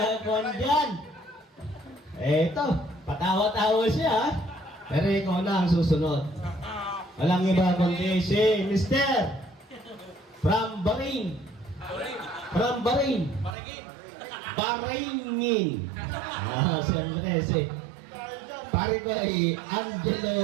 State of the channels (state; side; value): drops out; left; at 13.6 s